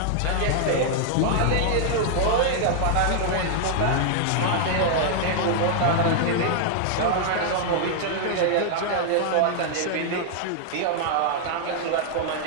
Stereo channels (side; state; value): both; different; correlation -0.01